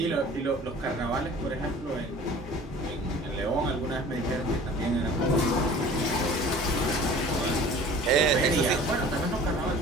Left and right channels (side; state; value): both; normal; correlation 0.45